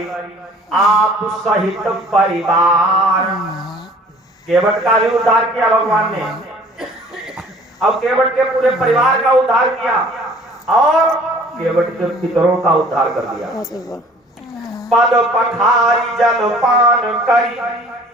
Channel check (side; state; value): both; normal; correlation 0.51